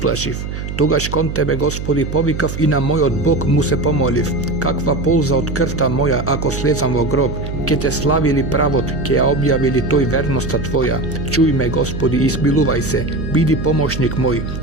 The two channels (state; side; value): noise; right; hum, 6 dB below the sound